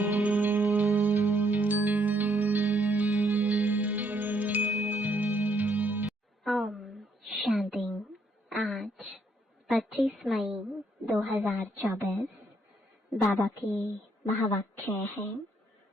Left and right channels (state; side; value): normal; both; correlation 0.71